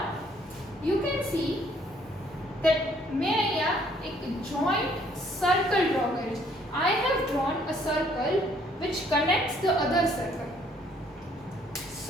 you can see that मैं यहाँ एक joint circle draw करी. I have drawn a circle which connects the other circle.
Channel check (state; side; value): normal; both; correlation 0.64